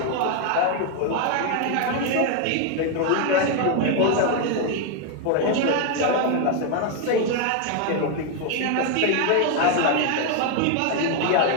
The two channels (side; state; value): both; different; correlation 0.01